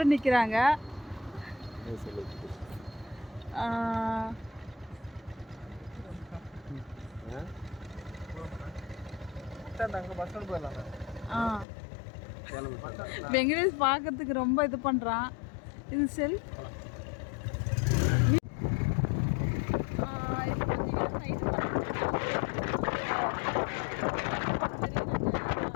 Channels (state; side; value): drops out; right; at 11.7 s